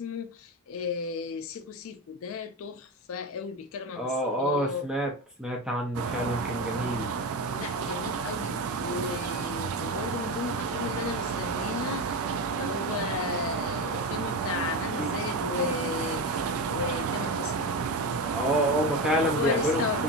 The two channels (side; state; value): both; normal; correlation 0.18